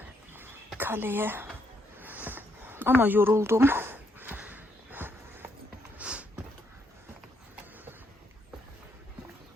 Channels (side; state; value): both; normal; correlation 0.75